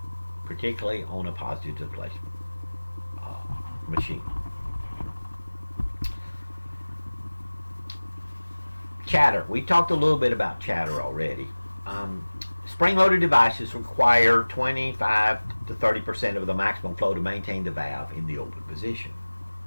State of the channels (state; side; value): inverted; both; correlation -1.00